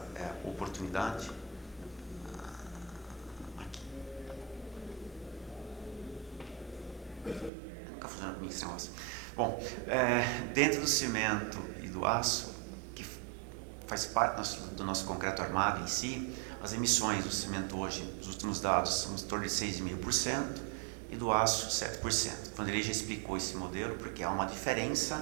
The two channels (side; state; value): left; drops out; at 7.5 s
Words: oportunidade. Aqui. Nunca funciona comigo esse negócio. Bom, dentro do cimento e do aço, que faz parte do nosso concreto armado em si, as emissões do cimento hoje, os últimos dados, são em torno de 6,5% e do aço 7%. Quando ele já explicou esse modelo, porque há uma